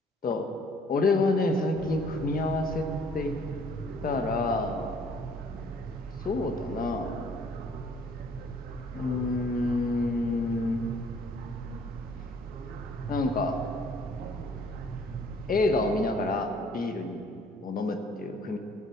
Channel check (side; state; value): both; normal; correlation 0.59